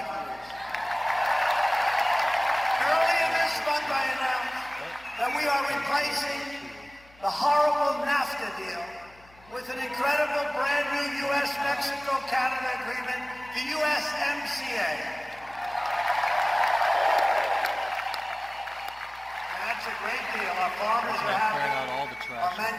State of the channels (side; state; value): left; noise; hum, 27 dB below the sound